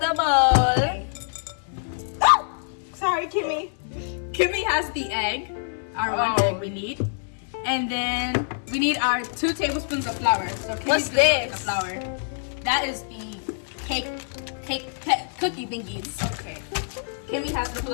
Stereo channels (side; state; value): right; silent; digital silence